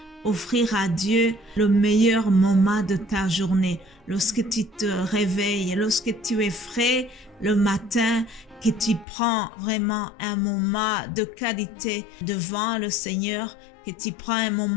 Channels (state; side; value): drops out; right; at 9.1 s